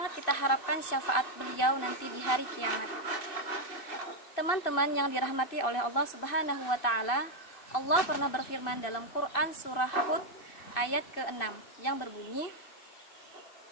kita harapkan syafaat beliau nanti di hari kiamat. Teman-teman yang dirahmati oleh Allah Subhanahu wa Ta'ala, Allah pernah berfirman dalam Quran surah Hud ayat ke-6 yang berbunyi,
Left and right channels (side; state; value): right; late; 2.6 ms